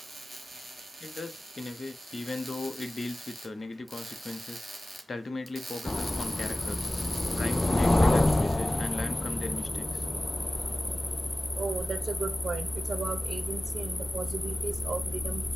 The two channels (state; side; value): normal; both; correlation 0.96